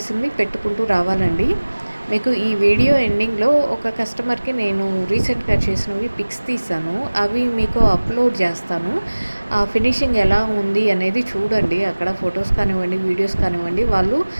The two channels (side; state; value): both; inverted; correlation -1.00